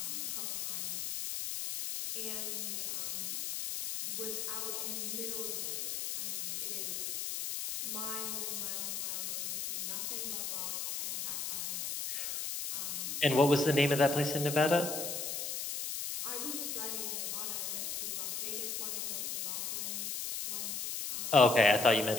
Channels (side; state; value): left; noise; hiss, 3 dB below the sound